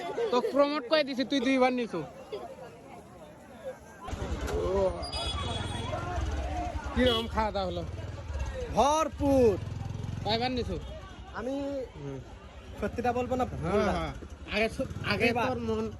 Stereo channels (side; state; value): both; identical; correlation 1.00